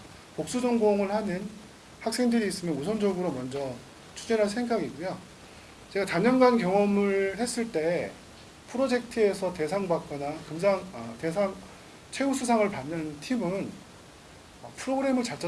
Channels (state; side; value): identical; both; correlation 1.00